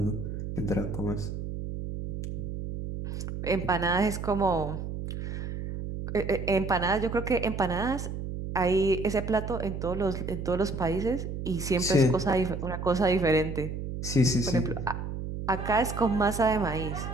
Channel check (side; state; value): right; noise; hum, 5 dB below the sound